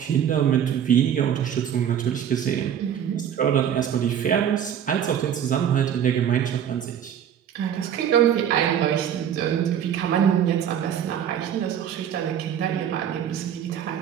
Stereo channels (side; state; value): left; quieter; 9.3 dB